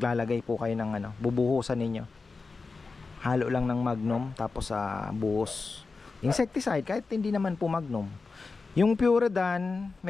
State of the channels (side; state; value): right; quieter; 4.2 dB